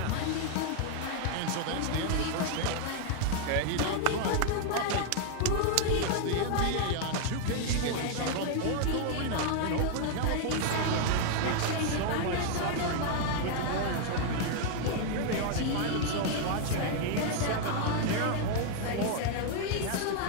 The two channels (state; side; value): different; both; correlation 0.00